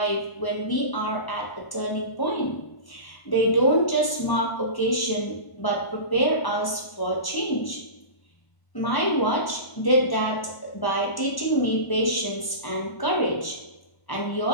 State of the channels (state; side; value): late; right; 1.0 ms